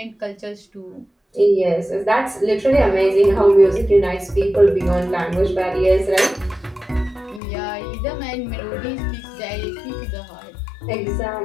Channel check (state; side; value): drops out; right; at 7.4 s